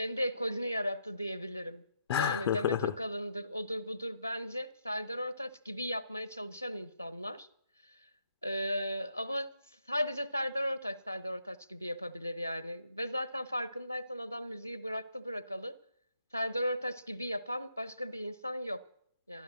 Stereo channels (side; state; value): both; inverted; correlation -0.76